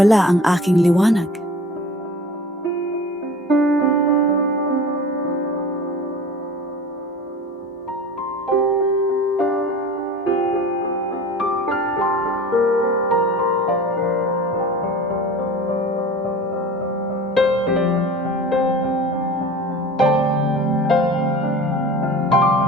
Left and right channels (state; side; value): normal; both; correlation 0.39